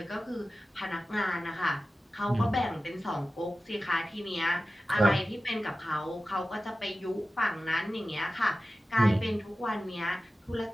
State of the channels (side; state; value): both; normal; correlation 0.95